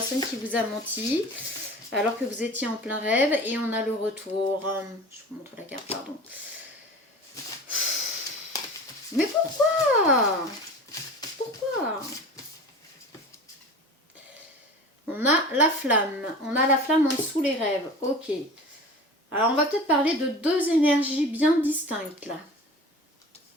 qui vous a menti. Alors que vous étiez en plein rêve et on a le retour. Je vous montre la carte, pardon. Mais pourquoi? Pourquoi? On a la flamme. On a la flamme en dessous les rêves. Ok. Alors on va peut-être parler de deux énergies bien distinctes là.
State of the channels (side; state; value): both; normal; correlation 0.37